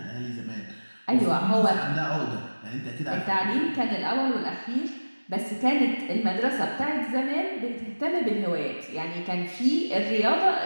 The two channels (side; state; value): both; inverted; correlation -1.00